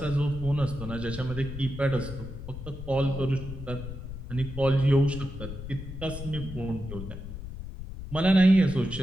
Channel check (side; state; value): left; noise; rumble, 10 dB below the sound